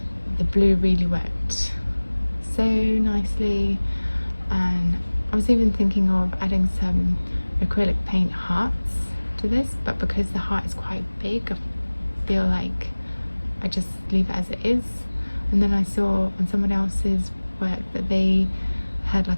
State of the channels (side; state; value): both; inverted; correlation -1.00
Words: blue really worked so nicely. And I was even thinking of adding some acrylic paint hearts to this, but because the heart is quite big, I feel like I just leave it as it is. And then I saw on someone else's work that they had like